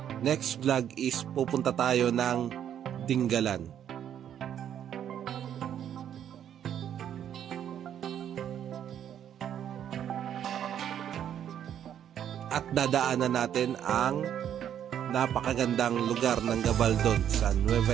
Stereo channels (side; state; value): left; quieter; 9.7 dB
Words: next vlog is pupunta tayo ng Dingalan. At dadaanan natin ang napakagandang lugar ng Gabaldon sa